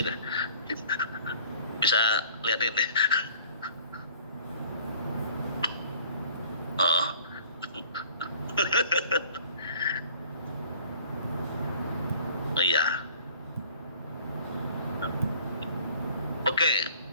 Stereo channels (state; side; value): inverted; both; correlation -0.50